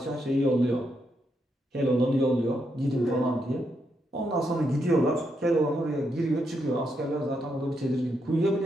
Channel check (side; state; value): both; normal; correlation 0.80